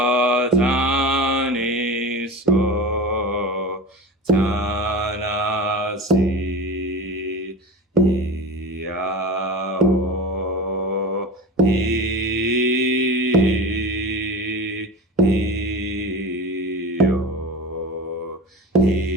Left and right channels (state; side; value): normal; both; correlation 0.31